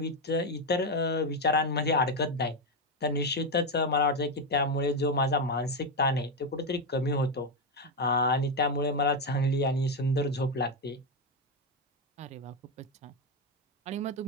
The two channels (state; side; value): normal; both; correlation 0.07